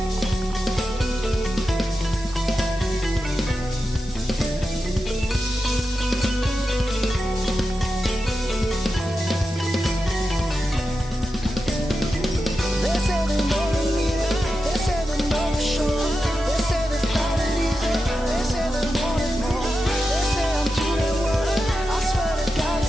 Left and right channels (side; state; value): both; normal; correlation 0.90